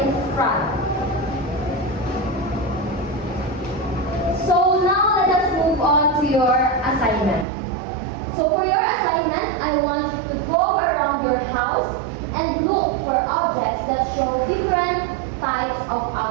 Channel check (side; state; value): left; drops out; at 7.5 s